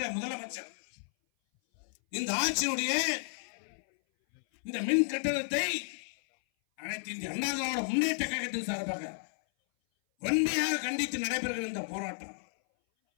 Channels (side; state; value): right; silent; 56 dB below the other